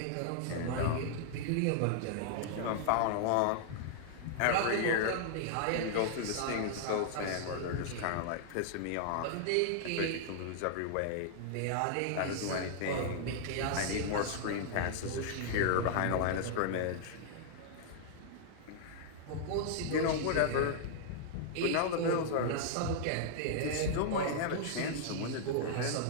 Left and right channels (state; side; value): different; both; correlation -0.01